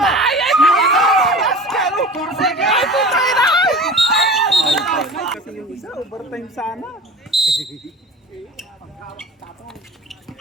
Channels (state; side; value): normal; both; correlation 0.37